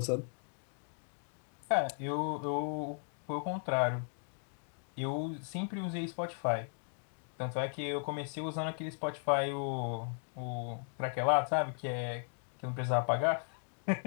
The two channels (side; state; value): right; silent; 53 dB below the other